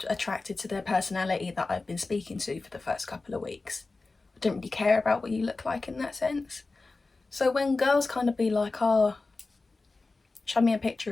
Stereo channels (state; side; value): quieter; right; 3.6 dB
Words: attracted to their personality that I've been speaking to for the first couple of weeks. I don't really care about what you look like in that sense. So when girls kind of be like, oh, show me a picture